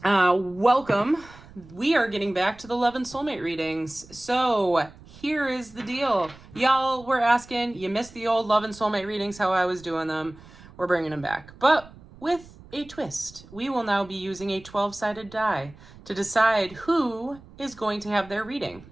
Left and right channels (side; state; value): right; noise; rumble, 21 dB below the sound